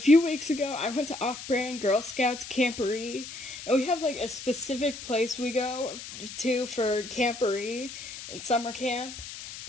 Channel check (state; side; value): noise; left; hiss, 11 dB below the sound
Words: weeks ago, I went to Off-Brand Girl Scouts Camporee, and we have like a specific place we go to for Camporee and summer camp.